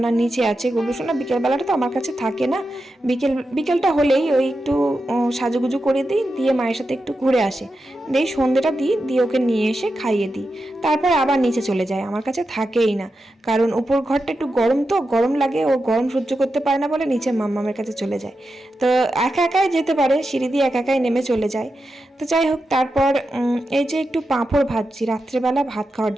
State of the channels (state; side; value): normal; both; correlation 0.89